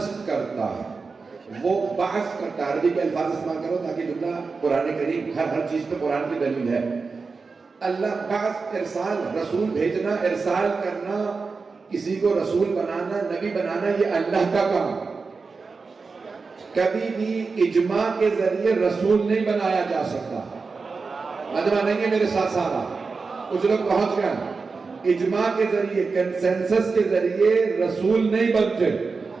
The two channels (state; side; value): quieter; left; 4.5 dB